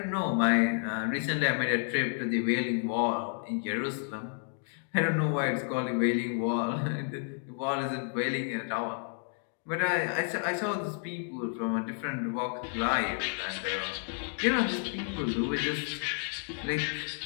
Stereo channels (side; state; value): right; silent; 57 dB below the other